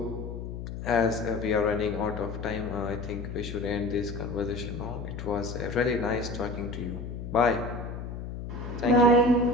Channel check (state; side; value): noise; left; hum, 7 dB below the sound